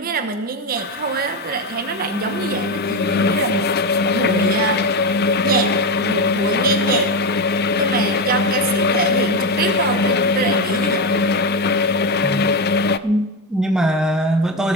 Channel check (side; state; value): both; normal; correlation 0.13